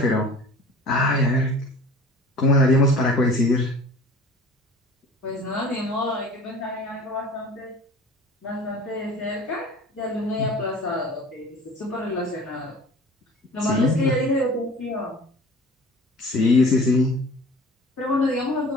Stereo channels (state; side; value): normal; both; correlation 0.44